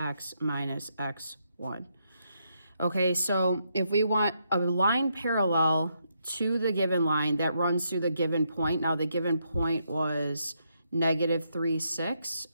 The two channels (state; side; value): inverted; both; correlation -0.78